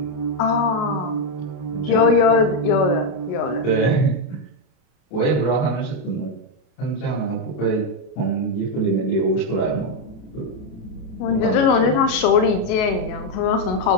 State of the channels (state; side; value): late; right; 33 ms